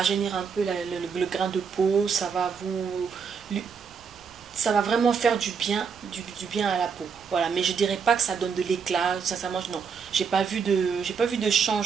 un peu le grain de peau, ça va vraiment faire du bien à la peau. Voilà, mais je dirais pas que ça donne de l'éclat. Sincèrement, non, j'ai pas vu de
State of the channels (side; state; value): left; quieter; 6.1 dB